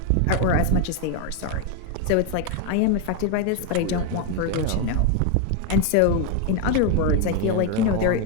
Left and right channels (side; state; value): both; different; correlation 0.01